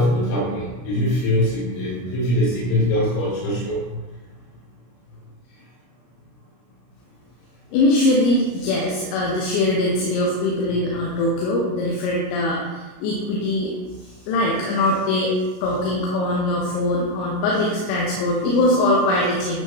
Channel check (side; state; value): right; late; 33 ms